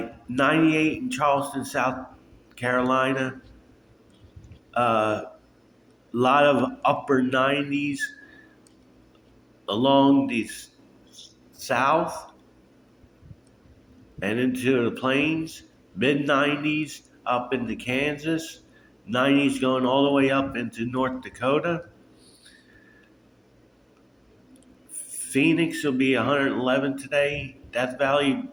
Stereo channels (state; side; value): identical; both; correlation 1.00